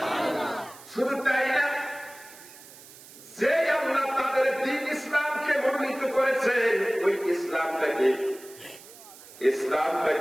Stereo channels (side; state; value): right; noise; hiss, 19 dB below the sound